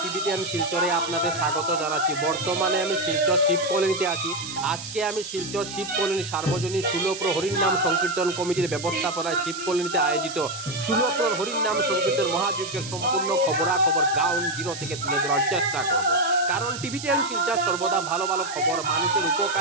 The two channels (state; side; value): noise; right; hiss, 10 dB below the sound